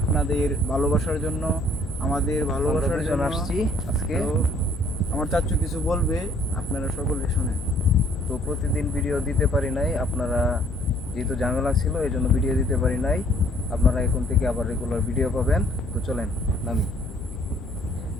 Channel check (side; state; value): both; normal; correlation 0.61